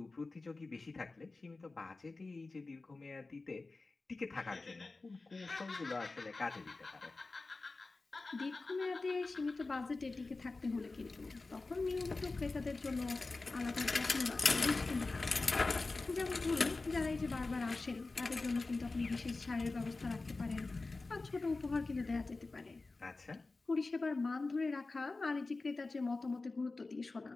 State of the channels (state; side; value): quieter; right; 3.5 dB